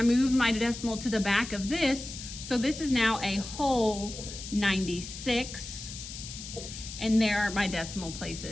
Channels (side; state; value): left; noise; hiss, 10 dB below the sound